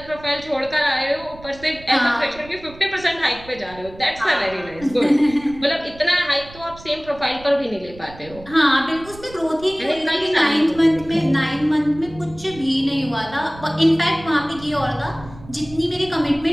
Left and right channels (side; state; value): right; noise; rumble, 19 dB below the sound